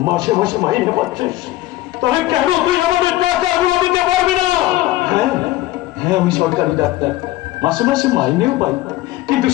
মাসে মাসে মাইনে পাচ্ছিস, তাহলে কেন তুই আমাদের টাকাগুলো দিতে পারবি না? হ্যাঁ হ্যাঁ আমি সরকারি ডাক্তার, মাসে মাসে মাইনেও পাই, কিন্তু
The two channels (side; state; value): right; quieter; 16.7 dB